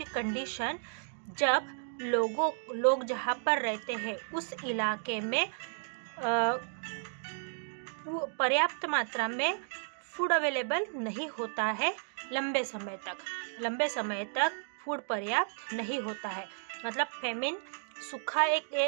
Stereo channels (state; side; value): silent; left; digital silence